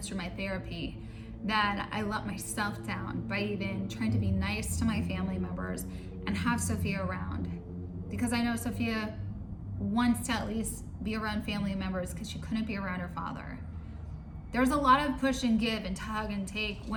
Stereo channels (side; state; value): both; identical; correlation 1.00